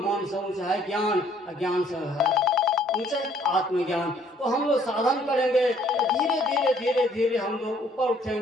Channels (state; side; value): normal; both; correlation 0.62